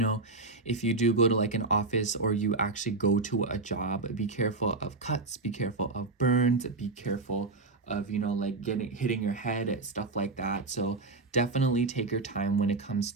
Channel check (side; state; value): left; quieter; 3.4 dB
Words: if you do go to like an office, or you actually go to a job, be careful of cuts, be careful of burns, be careful of, you know, like hitting your head, stuff like that. So definitely take your time when it comes